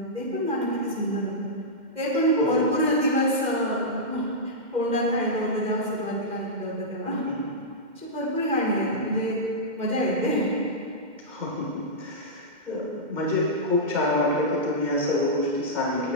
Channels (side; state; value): left; late; 2.1 ms